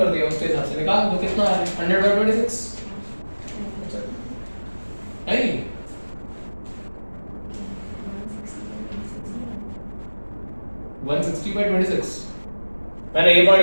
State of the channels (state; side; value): inverted; both; correlation -1.00